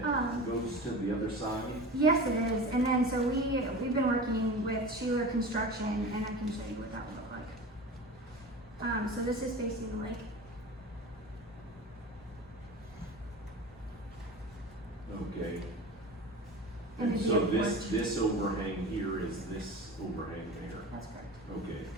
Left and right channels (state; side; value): normal; both; correlation 0.33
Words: goes to the other side? Yes, it is. And then so we've been working with Sheeler Construction, and I can show you what that would look like. So this is facing the lake. Okay. And And it'd be so a porch. this overhang here is this overhang there? That's correct. Okay.